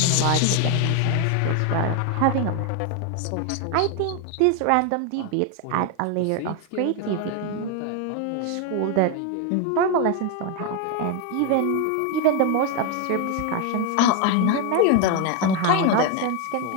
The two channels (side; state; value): both; different; correlation 0.01